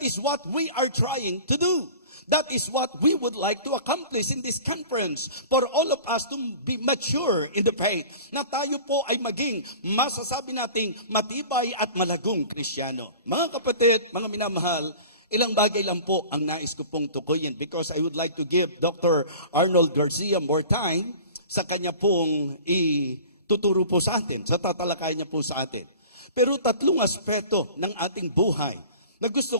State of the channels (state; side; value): inverted; both; correlation -0.41